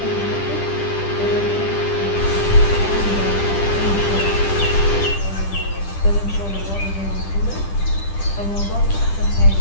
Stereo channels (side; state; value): right; late; 10 ms